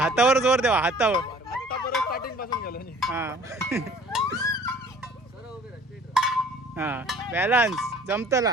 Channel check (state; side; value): normal; both; correlation 0.51